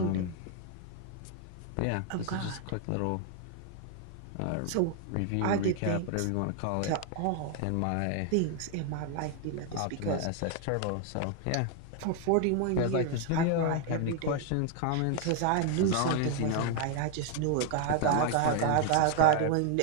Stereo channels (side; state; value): both; different; correlation 0.00